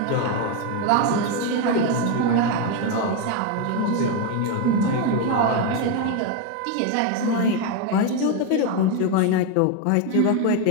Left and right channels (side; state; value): both; different; correlation 0.02